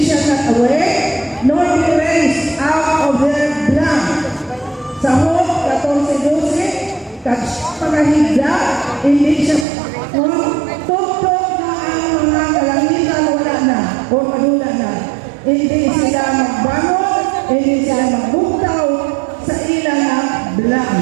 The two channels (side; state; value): left; drops out; at 9.7 s